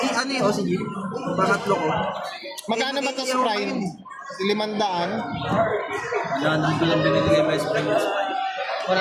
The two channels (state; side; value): identical; both; correlation 1.00